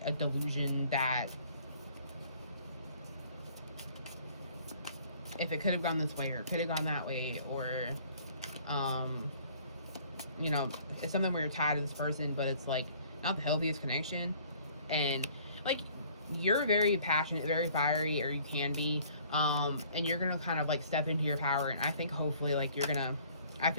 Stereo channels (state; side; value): inverted; both; correlation -0.56